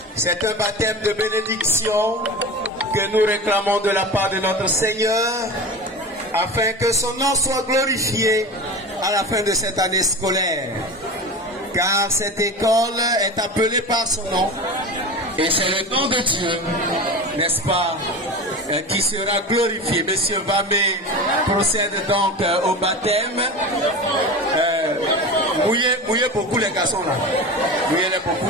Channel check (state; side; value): normal; both; correlation 0.29